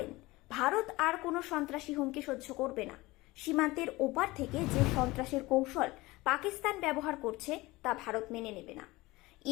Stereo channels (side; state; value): right; quieter; 20.7 dB